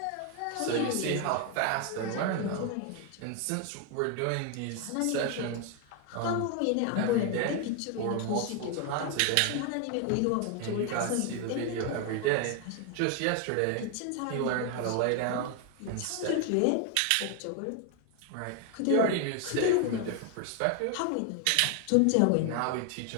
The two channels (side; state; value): both; different; correlation 0.01